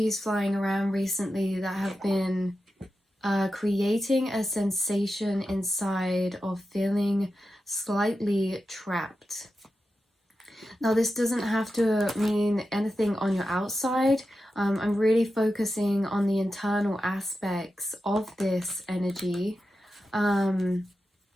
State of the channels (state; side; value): normal; both; correlation 0.91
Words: flying around recently that have been creating a sensation inside of feeling slightly trapped. Now, this doesn't have to mean anything on your outside. I'm really focusing on the internal aspects of this energy,